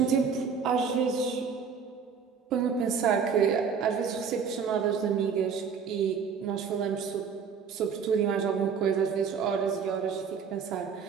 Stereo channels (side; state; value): left; quieter; 6.3 dB